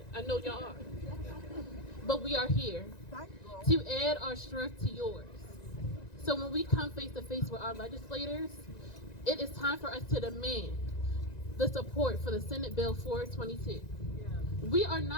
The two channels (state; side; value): late; right; 1.9 ms